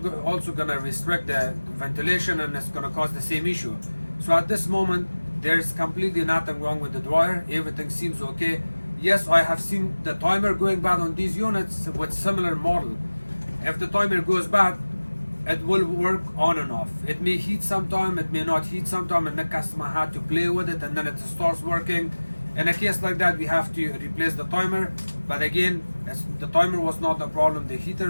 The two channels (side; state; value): both; inverted; correlation -1.00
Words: gonna restrict the ventilation, and it's gonna cause the same issue. So at this moment, there's completely nothing wrong with the dryer. Everything seems okay. Yes, I have seen the timer going bad on these units with similar model. If the timer goes bad, it will work on and off. It may heat sometime, it may not heat sometime, and the customer had to play with it, and then it starts working. In a case like that, we have to replace the timer. But again, the timer was not the problem, the heater